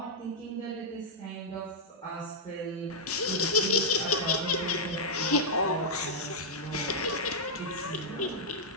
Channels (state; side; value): normal; both; correlation -0.08